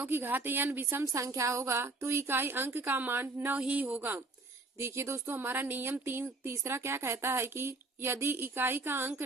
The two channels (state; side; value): quieter; left; 3.3 dB